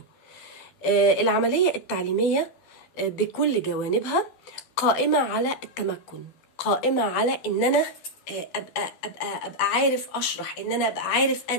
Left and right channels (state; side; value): late; right; 13 ms